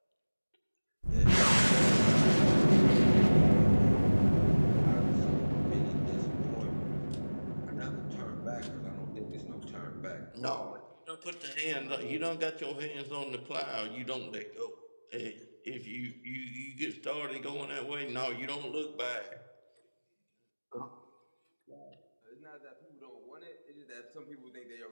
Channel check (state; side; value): inverted; both; correlation -1.00